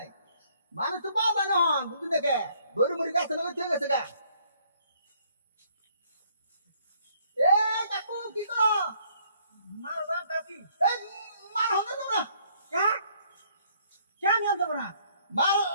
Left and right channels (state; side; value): inverted; both; correlation -0.65